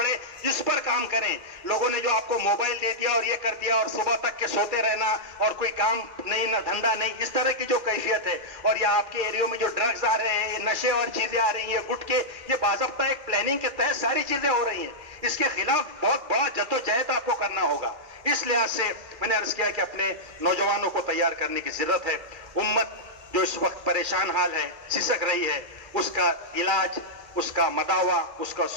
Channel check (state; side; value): late; left; 2.4 ms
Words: इस पर काम करें। लोगों ने जो आपको मोबाइल दे दिया और ये कर दिया और सुबह तक के सोते रहना और कोई काम नहीं, ना धंधा नहीं, इस तरह की जो कैफियत है, और या आपके एरिया में जो ड्रग्स आ रहे हैं, ये नशे और चीजें आ रही हैं, गुटके, ये बाज़ाब्ता एक प्लानिंग के तहत सारी चीजें हो रही हैं। इसके खिलाफ बहुत बड़ा जद्दोजहद आपको करना होगा। इस लिहाज से मैंने अर्ज किया कि अपने नौजवानों को तैयार करने की जरूरत है। उम्मत जो इस वक्त परेशान हाल है, सिसक रही है, उसका इलाज, उसका मदावा, उसका